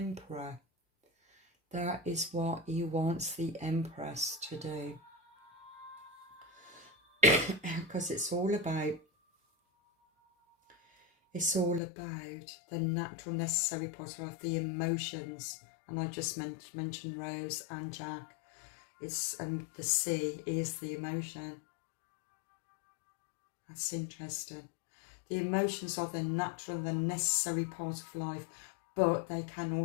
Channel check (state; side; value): drops out; right; at 11.8 s